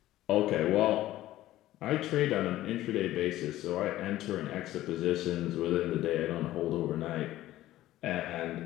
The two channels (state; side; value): quieter; right; 15.0 dB